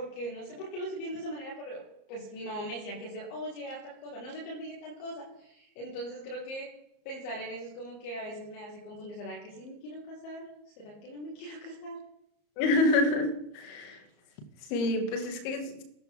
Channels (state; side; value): late; right; 34 ms